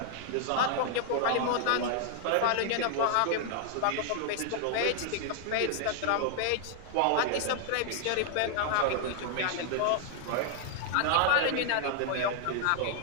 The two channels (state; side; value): different; both; correlation 0.00